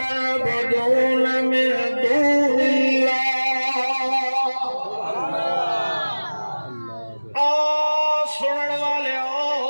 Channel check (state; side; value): inverted; both; correlation -1.00